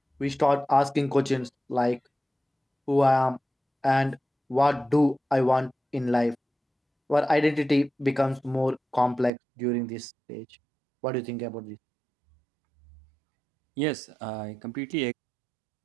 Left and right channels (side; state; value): left; drops out; at 9.3 s